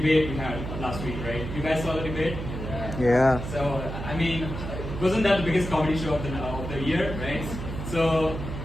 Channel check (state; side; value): noise; right; hum, 6 dB below the sound